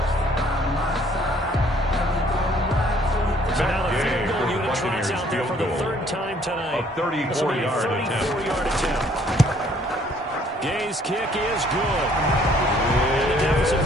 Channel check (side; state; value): both; normal; correlation 0.61